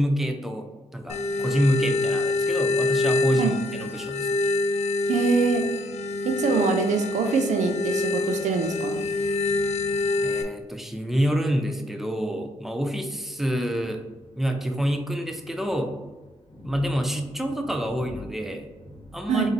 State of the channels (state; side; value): normal; both; correlation 0.70